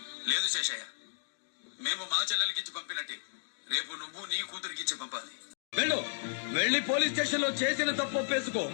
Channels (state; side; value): silent; right; digital silence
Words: లేదు శేషయ్య, మేము మా చెల్లెలకిచ్చి పంపినట్టే రేపు నువ్వు నీ కూతురికిచ్చి పంపాలి. వెళ్ళి పోలీస్ స్టేషన్ లో చేసిన తప్పు ఒప్పేసుకో.